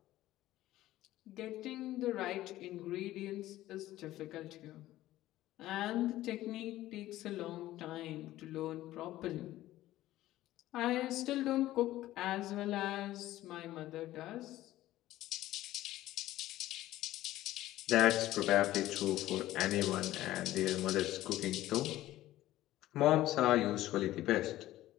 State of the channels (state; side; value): quieter; right; 15.2 dB